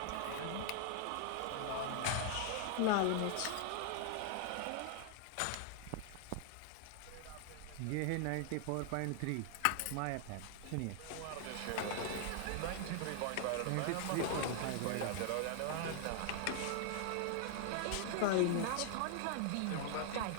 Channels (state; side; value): different; both; correlation 0.00